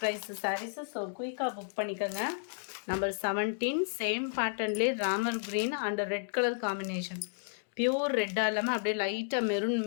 ப்ரைஸ் சாரீஸு. ஸோ குயிக்காக புக் பண்ணிக்கோங்க. நம்பர் 17 சேம் பேட்டர்ன்லேயே Ramar green and red colour combination. Pure ரெட்டாக இல்லாமல் அப்படியே லைட்டாக மெரூன்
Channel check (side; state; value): right; silent; digital silence